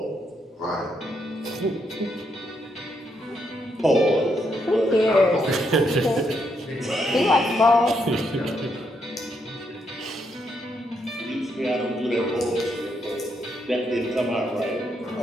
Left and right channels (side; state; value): both; normal; correlation 0.77